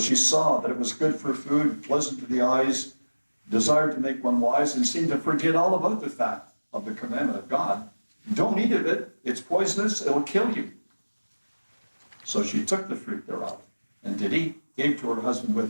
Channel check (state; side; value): inverted; both; correlation -1.00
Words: saw that it was good for food, pleasant to the eyes, desired to make one wise, and seemed to forget all about the fact of the commandment of God. Don't eat of it. It's poisonous. It'll kill you. So she took the fruit thereof and did eat, gave to her husband